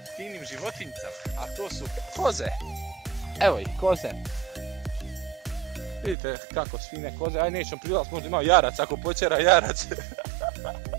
finim životinjicama, a to su koze. Evo ih, koze. Vidite kako su fine koze, aj nećemo prilaz, možda ima jarac, ako počera jarac.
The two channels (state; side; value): drops out; left; at 6.2 s